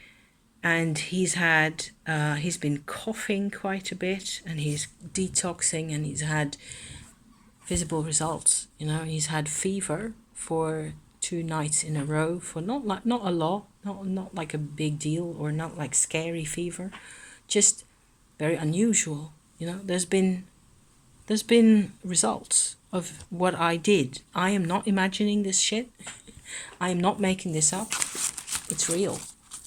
And he's been coughing quite a bit, and he's detoxing, and he's had visible results. You know, he's had fever for 2 nights in a row for not a lot, not like a big deal, or not like scary fever, just very unusual. You know, there's been results of what I did. I am not imagining this shit. I am not making this up. It's real.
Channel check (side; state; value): both; identical; correlation 1.00